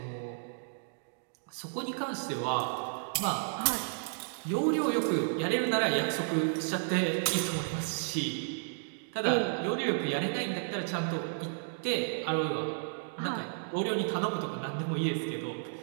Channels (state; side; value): silent; left; digital silence